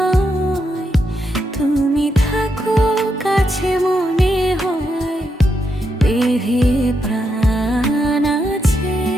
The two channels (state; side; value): normal; both; correlation 0.82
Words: তুমি থাকো কাছে মনে হয় দেহে প্রাণ আছে।